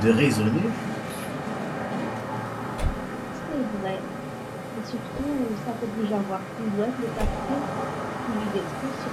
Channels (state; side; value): identical; both; correlation 1.00